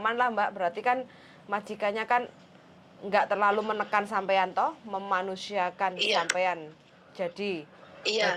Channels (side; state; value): both; identical; correlation 1.00